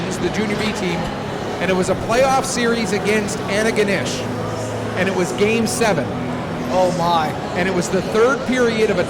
the Junior B team, and it was a playoff series against Antigonish, and it was Game 7. Oh my! And it was the 3rd period of a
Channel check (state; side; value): identical; both; correlation 1.00